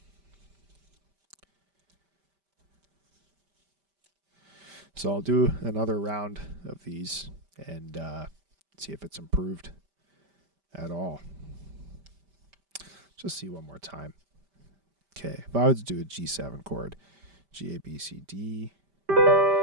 So I'll do another round of these and see if it's improved at all. Just see one more time. Okay, if I was to do a G7 chord, G, A, B, C, D, E,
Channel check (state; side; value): late; left; 5.1 ms